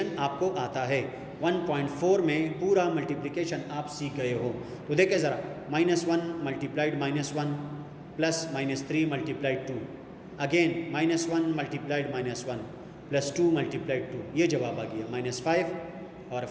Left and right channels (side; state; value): both; identical; correlation 1.00